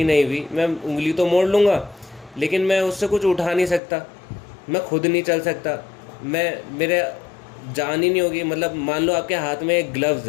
नहीं हुई, मैं उंगली तो मोड़ लूँगा, लेकिन मैं उससे कुछ उठा नहीं सकता, मैं खुद नहीं चल सकता, मेरे जान ही नहीं होगी। मतलब मान लो आपके हाथ में एक ग्लव्स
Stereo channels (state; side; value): drops out; right; at 3.8 s